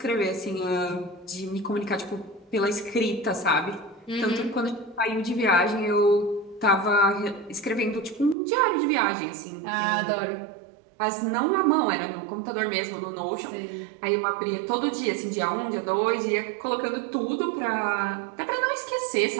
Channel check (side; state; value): left; drops out; at 8.3 s